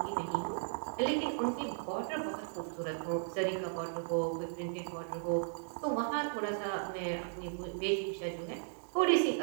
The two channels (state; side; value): silent; left; digital silence